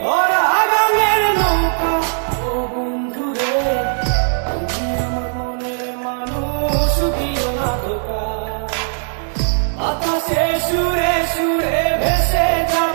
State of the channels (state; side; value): silent; left; digital silence